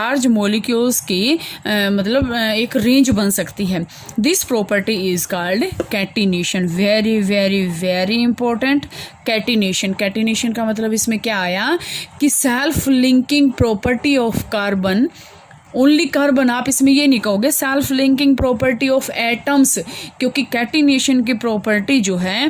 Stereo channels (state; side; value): identical; both; correlation 1.00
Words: मोलिक्यूल्स की मतलब एक रेंज बन सकती है। This property is called catenation. Very very very important, catenation. Catenation का मतलब इसमें क्या आया कि self linking property of carbon, only carbon, आप इसमें ये नहीं कहोगे self linking property of atoms, क्योंकि कैटिनेशन की प्रॉपर्टी जो है